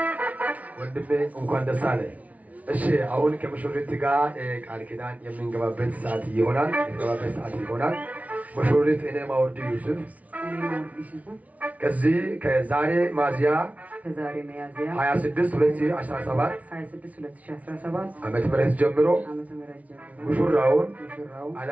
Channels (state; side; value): late; left; 0.069 ms